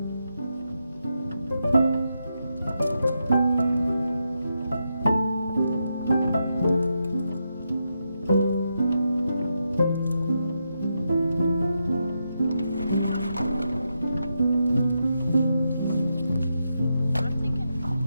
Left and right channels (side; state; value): both; inverted; correlation -0.85